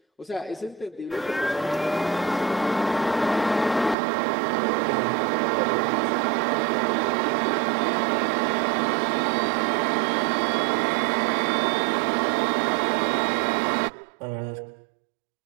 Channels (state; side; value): drops out; left; at 4.0 s